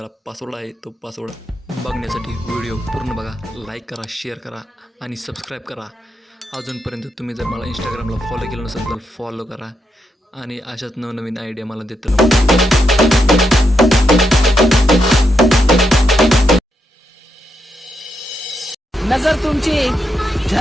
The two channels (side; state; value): both; normal; correlation 0.82